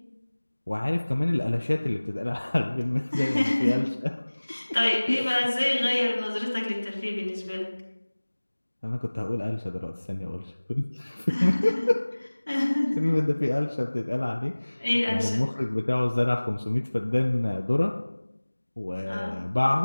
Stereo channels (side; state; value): both; inverted; correlation -1.00